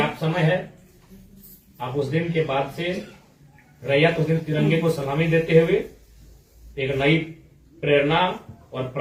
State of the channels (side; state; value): both; identical; correlation 1.00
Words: समय है। आप उस दिन के बाद से रैयत उस दिन तिरंगे को सलामी देते हुए एक नई प्रेरणा और